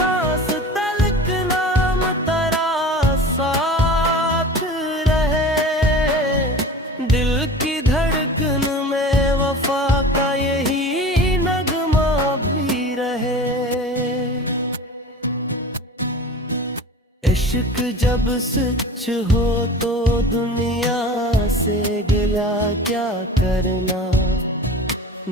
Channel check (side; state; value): both; normal; correlation 0.37